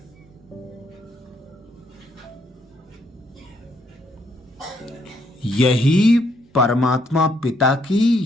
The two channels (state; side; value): normal; both; correlation 0.71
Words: यही परमात्मा पिता की